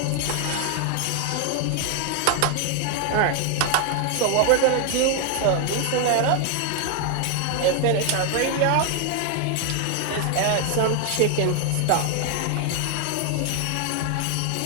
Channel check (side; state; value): both; different; correlation 0.00